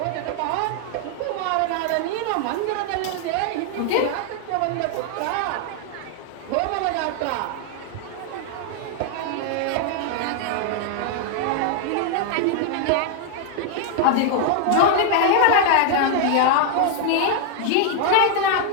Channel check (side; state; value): both; different; correlation 0.00